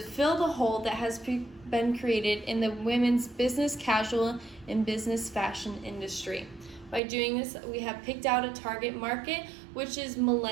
fill the hole that has been created in the women's business casual and business fashion industry. By doing this, we have picked out a target market, which is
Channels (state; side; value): drops out; left; at 7.0 s